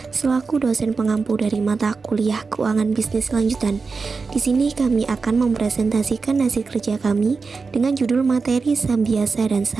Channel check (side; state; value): left; quieter; 4.6 dB